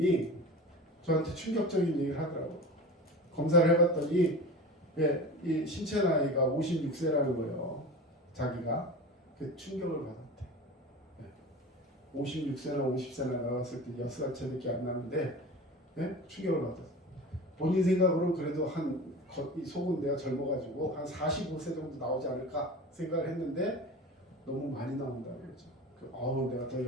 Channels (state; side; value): normal; both; correlation 0.33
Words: 저한테 충격적인 얘기를 하더라고요. 검사를 해봤더니 이 신체 나이가 56세라는 거예요. 자기가. 그 충격을 받았대. 56세나 50세나 나왔을 때 6살 차이밖에 안 나는데 충격을 받았어요. 본인 생각으로는 그래도 이 속은 내가 젊어가지고 한 45세 정도 나오지 않을까 생각을 했는데 너무 많이 나온다고 그러죠. 내가 더